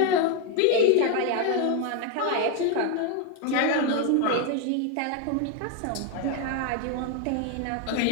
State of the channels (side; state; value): both; different; correlation 0.01